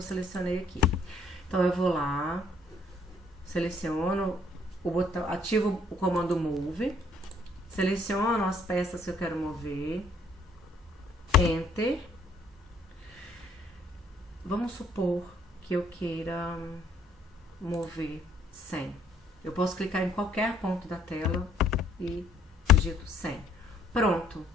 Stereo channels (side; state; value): both; normal; correlation 0.64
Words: selecionei aqui. Então eu vou lá, seleciono o botão, ativo o comando Move, seleciono as peças que eu quero mover, Enter. Vamos supor que eu queira mover 100. Eu posso clicar em qualquer ponto da tela e digito 100. Pronto.